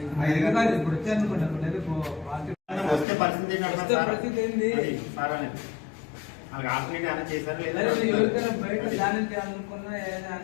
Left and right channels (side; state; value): right; drops out; at 3.1 s